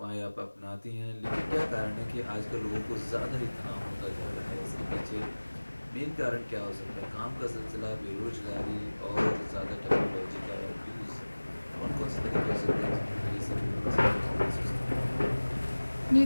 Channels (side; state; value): both; inverted; correlation -1.00